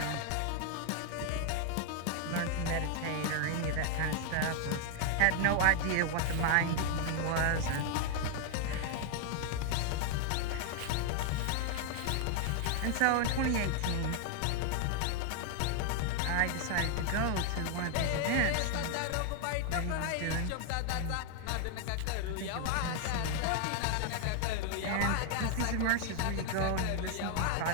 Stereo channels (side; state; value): both; different; correlation 0.00